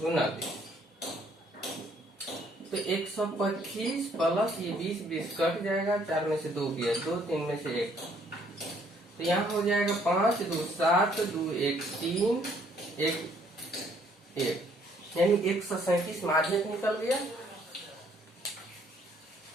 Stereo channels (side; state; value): both; normal; correlation 0.65